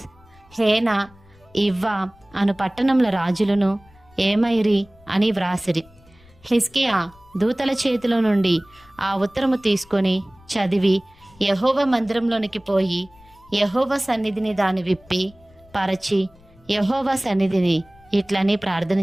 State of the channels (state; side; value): noise; left; rumble, 28 dB below the sound